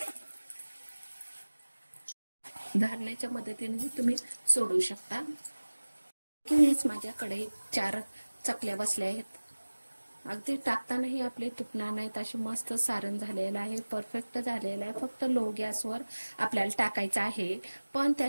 धारण्याच्या मदतीने तुम्ही सोडू शकता. किंवाच माझ्याकडे 4 चकल्या बसल्या आहेत. अगदी टाकतानाही आपले तुटणार नाहीत, अशी मस्त सारण झालेलं आहे, परफेक्ट झालेलं आहे. फक्त लो गॅसवर आपल्याला टाकायचं आहे, पण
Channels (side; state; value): both; inverted; correlation -1.00